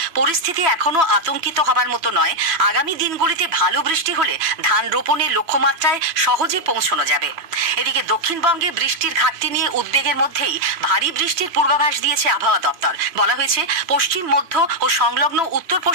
পরিস্থিতি এখনো আতঙ্কিত হবার মতো নয়। আগামী দিনগুলিতে ভালো বৃষ্টি হলে ধান রোপণের লক্ষ্যমাত্রায় সহজে পৌঁছানো যাবে। এদিকে দক্ষিণবঙ্গে বৃষ্টির ঘাটতি নিয়ে উদ্বেগের মধ্যেই ভারী বৃষ্টির পূর্বাভাস দিয়েছে আবহাওয়া দপ্তর। বলা হয়েছে, পশ্চিম, মধ্য ও সংলগ্ন উত্তর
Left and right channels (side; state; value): left; late; 2.5 ms